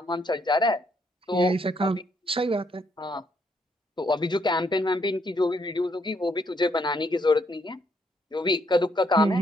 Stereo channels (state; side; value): normal; both; correlation 0.72